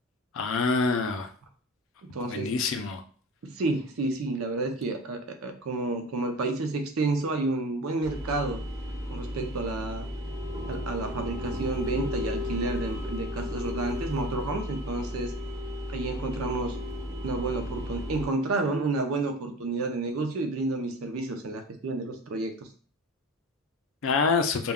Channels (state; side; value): normal; both; correlation 0.35